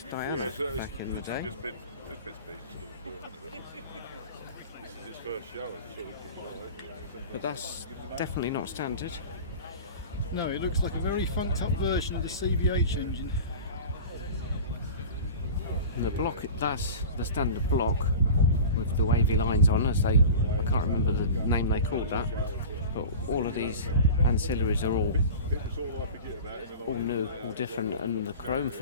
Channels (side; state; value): both; inverted; correlation -0.35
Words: Diana back in the day. This is its first show, But that's definitely not standard. No, it looks like a very funked up version of the CVH engine. And the block, that's the standard block with the wavy lines on, as they, I can't remember the name they called that. But all of these ancillaries are all new, all different, and the chrome